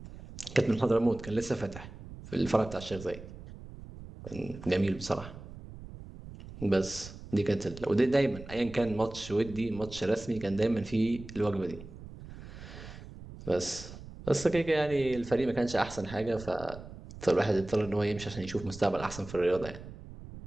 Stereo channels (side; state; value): right; noise; rumble, 14 dB below the sound